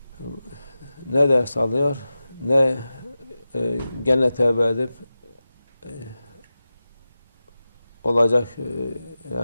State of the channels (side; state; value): both; inverted; correlation -0.93